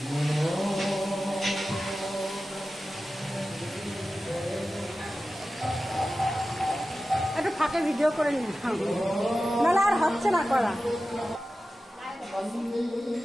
একটু ফাঁকে ভিডিও করে নিন, নাহলে আর হচ্ছে না করা।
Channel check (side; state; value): both; normal; correlation 0.94